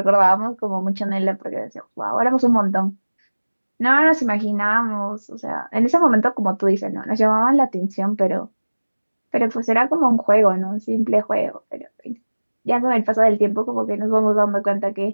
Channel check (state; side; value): inverted; both; correlation -1.00